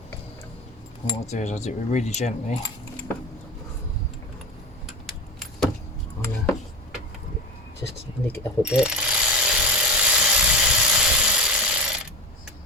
What I'll do is I'll do it really gently. Just nick it up a bit.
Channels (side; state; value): both; normal; correlation 0.26